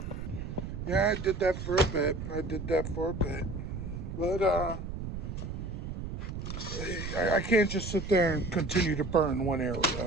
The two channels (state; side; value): noise; right; rumble, 6 dB below the sound